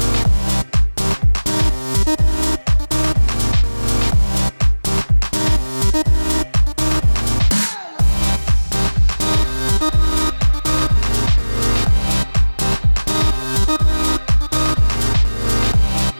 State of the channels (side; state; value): both; inverted; correlation -1.00